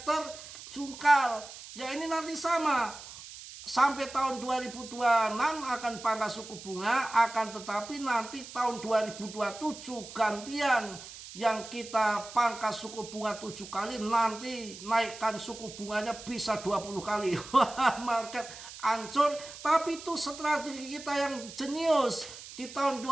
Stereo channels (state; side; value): noise; right; hiss, 14 dB below the sound